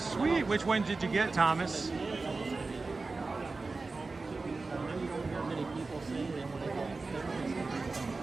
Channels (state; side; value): quieter; left; 3.8 dB